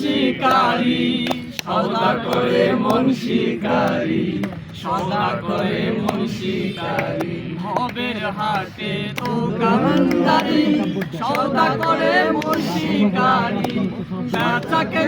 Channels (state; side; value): identical; both; correlation 1.00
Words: সদা করে মন শিকারি সদা করে মন শিকারি ভবের হাটে দোকানদারি সদা করে মন শিকারি বেচা